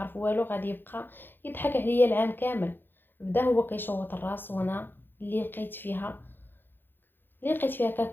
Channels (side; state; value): right; late; 0.098 ms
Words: والو غادي يبقى يضحك عليا العام كامل. بدا هو كيشوط الراس وانا اللي لقيت فيها